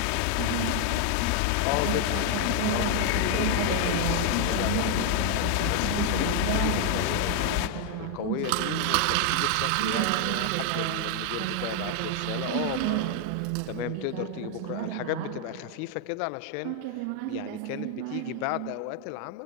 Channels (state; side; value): different; both; correlation 0.00